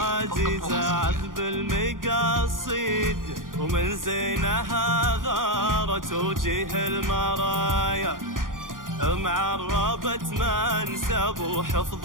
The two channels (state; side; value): late; left; 0.90 ms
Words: عذب المقاصيد، ومن زينها غارت وجيه المرايا. معربت منسب